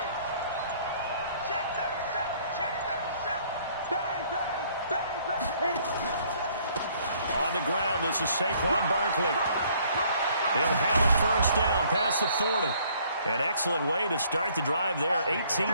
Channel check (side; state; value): both; inverted; correlation -0.62